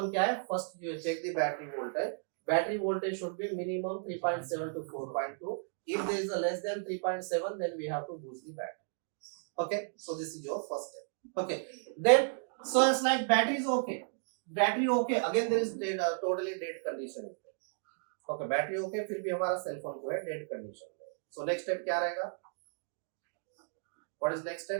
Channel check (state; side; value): silent; left; digital silence